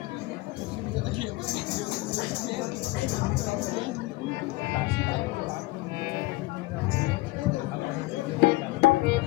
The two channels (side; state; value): right; quieter; 20.5 dB